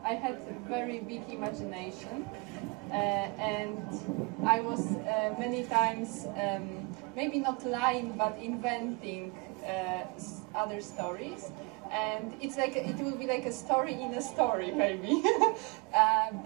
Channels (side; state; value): left; quieter; 28.6 dB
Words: had a very big imagination, and I was many times, maybe not lying, but inventing other stories. And it's like it will be like a story in a story, maybe.